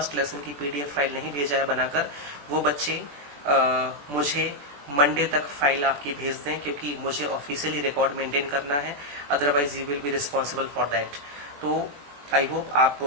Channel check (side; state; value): left; late; 21 ms